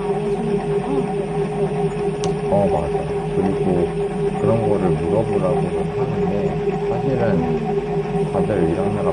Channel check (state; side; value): identical; both; correlation 1.00